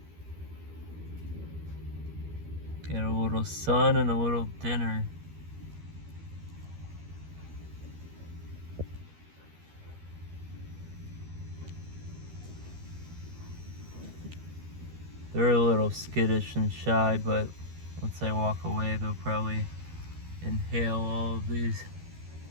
Get a little sun and a little dinner. They're a little skittish and shy, but once I walk away, they'll probably inhale all of these.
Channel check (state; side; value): late; left; 13 ms